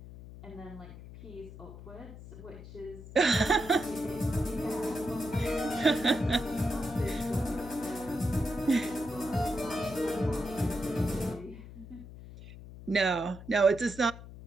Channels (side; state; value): left; noise; hum, 15 dB below the sound